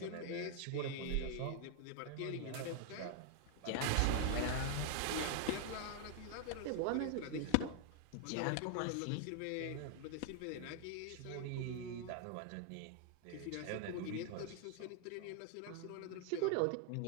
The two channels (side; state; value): both; different; correlation 0.00